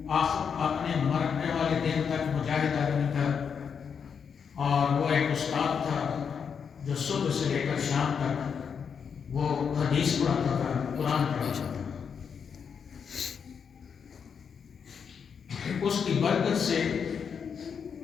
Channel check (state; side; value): quieter; right; 6.7 dB